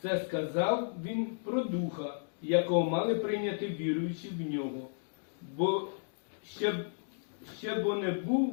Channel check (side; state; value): right; silent; digital silence